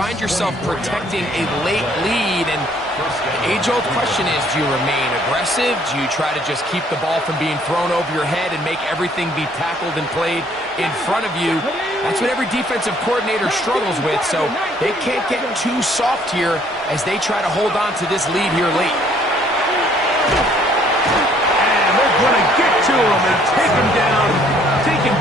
yourself protecting a late lead, and the age-old question is, do you remain aggressive? Do you try to just keep the ball from being thrown over your head and make everything be tackled and played in front of you? That's what every defensive coordinator struggles with, so they can't get too soft here as they try to hold on to this lead here late. And they're going to get to him and take him down, take him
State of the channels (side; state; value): both; normal; correlation 0.62